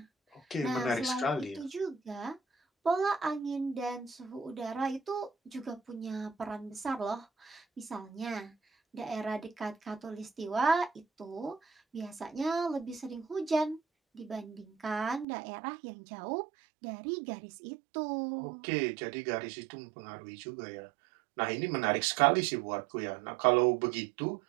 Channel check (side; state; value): left; drops out; at 15.2 s